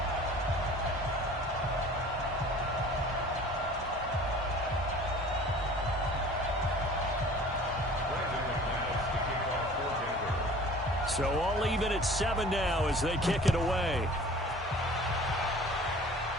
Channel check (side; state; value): both; normal; correlation 0.46